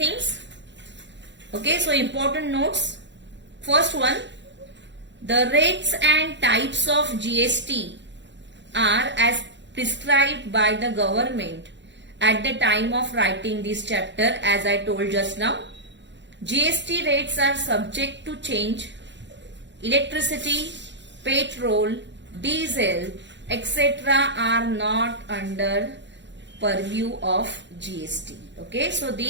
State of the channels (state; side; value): late; left; 0.52 ms